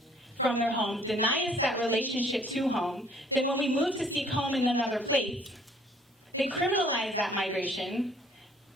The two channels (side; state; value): both; normal; correlation 0.59